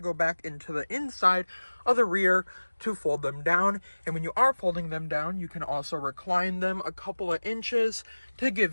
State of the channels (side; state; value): both; inverted; correlation -1.00